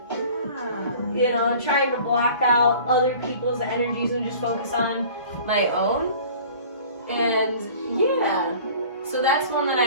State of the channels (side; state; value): both; inverted; correlation -0.46